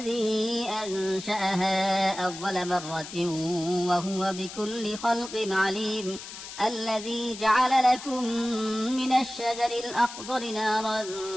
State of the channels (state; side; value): noise; left; hiss, 12 dB below the sound